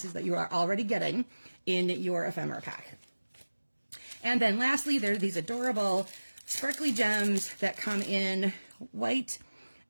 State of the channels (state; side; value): inverted; both; correlation -1.00